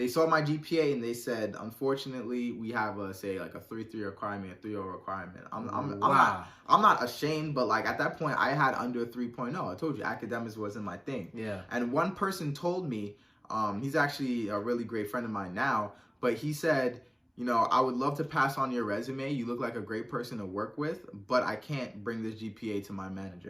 saw my GPA and they said, unfortunately, we have a 3.3 requirement, a 3.0 requirement. I'm not ashamed, but like at that point I had under a 3.0. I told you academics wasn't my thing. Yeah. And one person told me, he's actually a really great friend of mine now, but he said, I would love to pass on your resume. You look like a great person to work with, but I can't bring this GPA to my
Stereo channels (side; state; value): both; identical; correlation 1.00